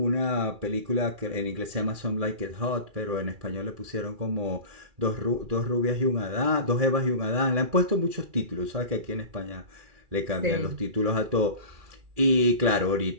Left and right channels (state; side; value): late; left; 2.4 ms